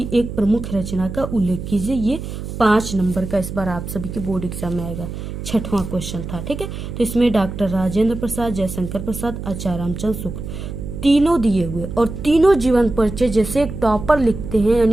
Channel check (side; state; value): right; noise; hum, 8 dB below the sound